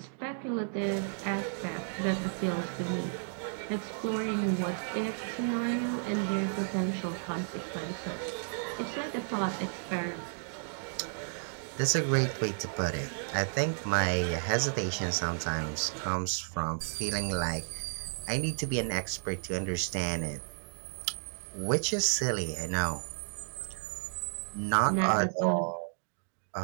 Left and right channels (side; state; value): left; silent; digital silence